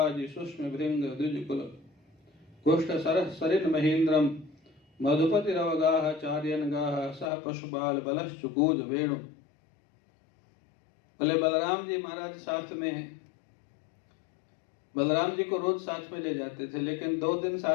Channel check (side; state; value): right; drops out; at 7.3 s